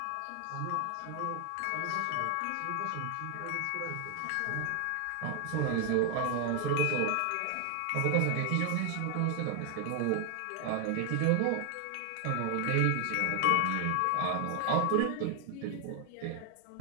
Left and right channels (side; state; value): both; different; correlation 0.00